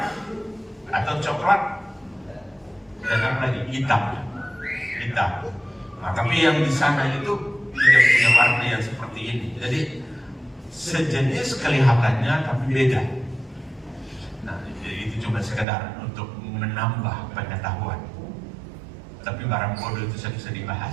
atau coklat dan apa lagi hitam. Nah, tapi yang di sana itu tidak punya warna yang seperti ini. Jadi sejenis kelihatannya tapi beda. Nah, itu cuma sekedar untuk menambah pengetahuan. Tapi barang bodoh itu bisa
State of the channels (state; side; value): drops out; left; at 15.7 s